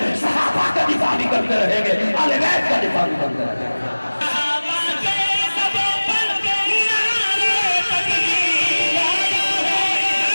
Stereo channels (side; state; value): both; inverted; correlation -1.00